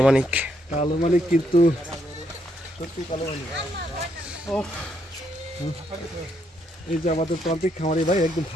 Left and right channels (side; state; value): both; normal; correlation 0.75